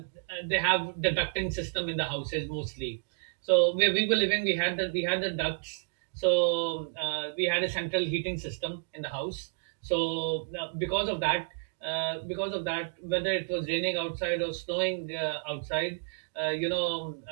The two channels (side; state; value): left; silent; digital silence